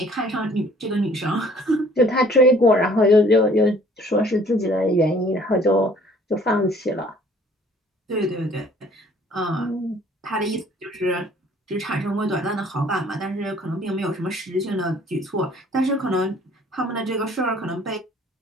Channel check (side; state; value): both; normal; correlation 0.55